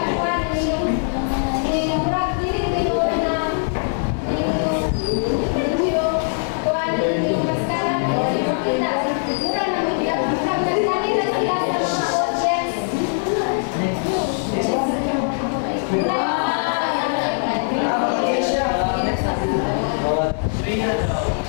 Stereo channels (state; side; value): silent; right; digital silence